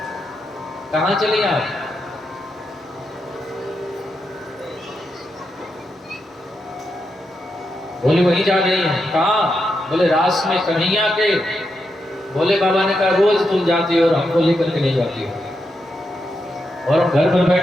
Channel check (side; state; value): both; normal; correlation 0.85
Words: कहाँ चली आप? बोले वहीं जा रही हैं। कहाँ? बोले रास में कन्हैया के। भोले बाबा ने कहा, रोज तुम जाती हो और हमको लेकर के नहीं जाती हो, और हम घर पर